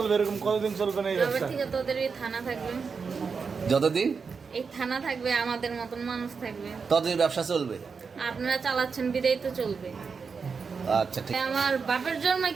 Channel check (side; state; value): left; quieter; 5.4 dB